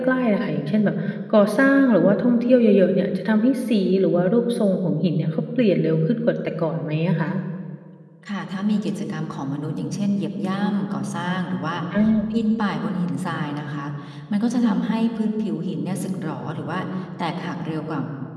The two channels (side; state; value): both; identical; correlation 1.00